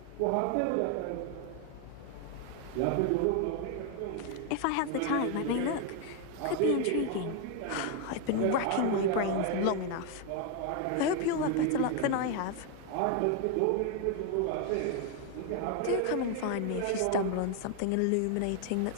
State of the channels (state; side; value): different; both; correlation 0.01